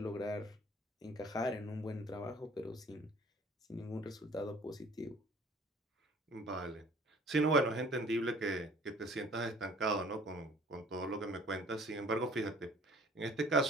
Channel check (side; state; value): both; normal; correlation 0.53